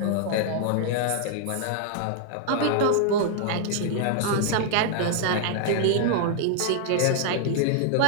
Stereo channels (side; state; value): both; different; correlation -0.01